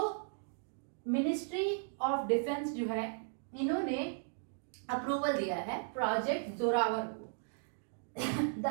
ministry of defence जो है इन्होंने अप्रूवल दिया है प्रोजेक्ट जोरावर को.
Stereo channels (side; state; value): left; silent; digital silence